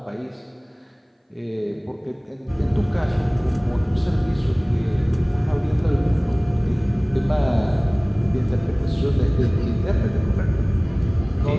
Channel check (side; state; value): both; identical; correlation 1.00